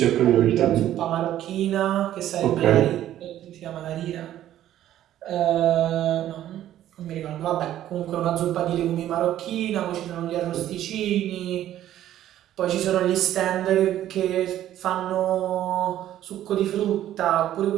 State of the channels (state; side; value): quieter; left; 12.4 dB